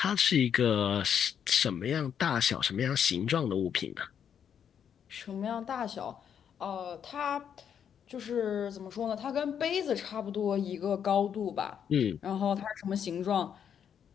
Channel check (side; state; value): right; quieter; 8.3 dB